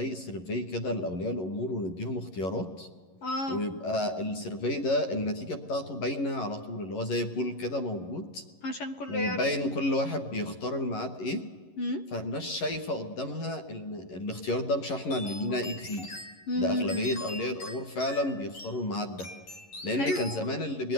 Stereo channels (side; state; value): right; late; 11 ms